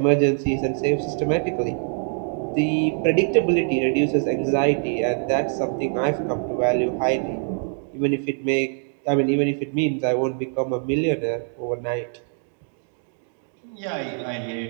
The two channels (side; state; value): left; silent; 55 dB below the other